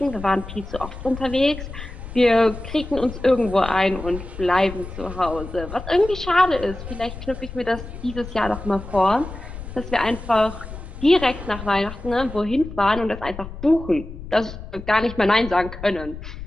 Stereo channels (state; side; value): noise; left; rumble, 11 dB below the sound